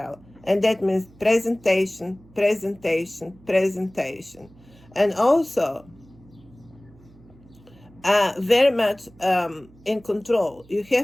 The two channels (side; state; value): right; noise; hum, 26 dB below the sound